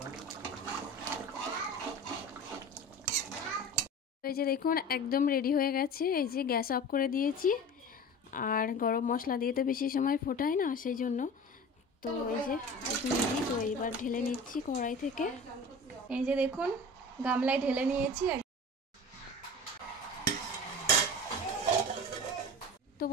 এই যে দেখুন একদম রেডি হয়ে গেছে। এই যে গ্যাস অফ করে দিয়েছি। আর গরম মশলা দিয়ে তো বেশি সময় ফোটায় না, সেই জন্য। তো এই যে একদম রেডি। তো এইবার ঢেলে নিচ্ছি কড়াই থেকে। এই যে দেখুন গামলায় ঢেলে নিয়েছি। তো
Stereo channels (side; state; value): both; normal; correlation 0.35